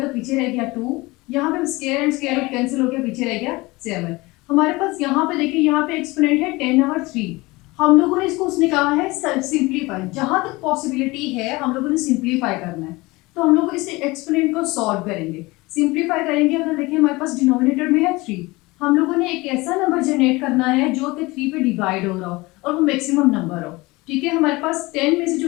तो पीछे रह गया 2। यहाँ पे square and square root cancel हो गया, पीछे रह गया 7। हमारे पास यहाँ पे देखिए यहाँ पे एक्सपोनेंट है 10/3। हम लोगों ने इसको उसने कहा है सिंप्लीफाई, जहां तक पॉसिबिलिटी है हम लोगों ने सिंप्लीफाई करना है। तो हम लोग इस एक्सपोनेंट को सॉल्व करेंगे, सिंप्लीफाई करेंगे। अगर देखिए हमारे पास डिनोमिनेटर में है 3, हम लोगों ने एक ऐसा नंबर जनरेट करना है जो कि 3 पे डिवाइड हो रहा हो और वो मैक्सिमम नंबर हो। ठीक है, हमारे पास 10 में से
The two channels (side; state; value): right; quieter; 22.4 dB